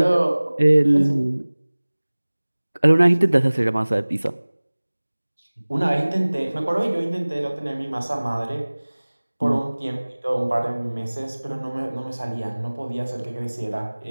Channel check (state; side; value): inverted; both; correlation -1.00